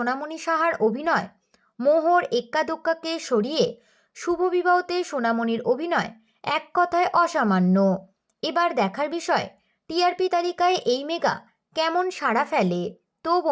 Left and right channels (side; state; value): both; identical; correlation 1.00